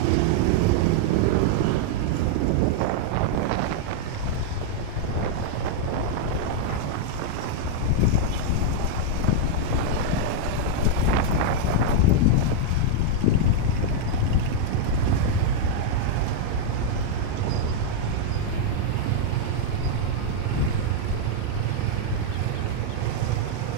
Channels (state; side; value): different; both; correlation -0.01